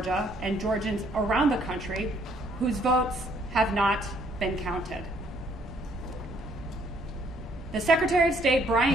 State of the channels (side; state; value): both; normal; correlation 0.66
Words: and Georgians around the country whose votes have not been counted. The Secretary of State,